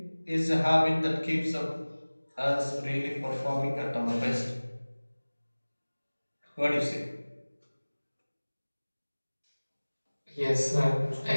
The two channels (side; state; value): both; inverted; correlation -1.00